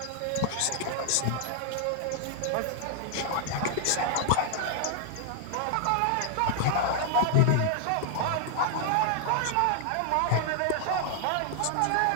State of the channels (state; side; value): different; both; correlation -0.01